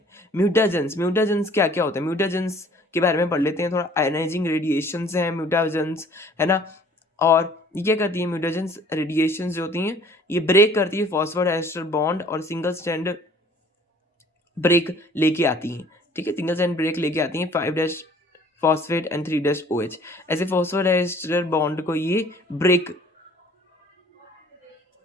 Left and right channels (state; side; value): normal; both; correlation 0.53